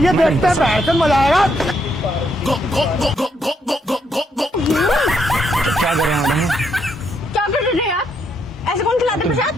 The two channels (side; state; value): both; normal; correlation 0.76